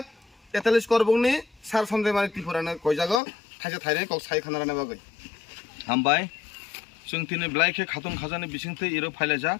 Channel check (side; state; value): right; drops out; at 3.2 s